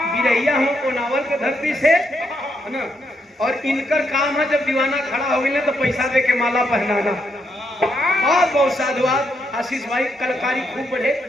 बिरैया हो कोनावल के धरती से है ना। और इनकर काम है जब दीवाना खड़ा हो गया तो पैसा दे के माला पहनाना। बहुत बहुत साधुवाद आशीष भाई, कलाकारी खूब बढ़े।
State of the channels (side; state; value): both; normal; correlation 0.78